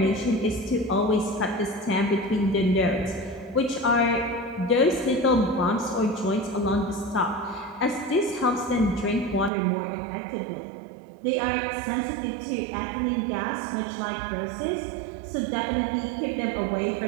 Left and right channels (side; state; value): left; drops out; at 9.5 s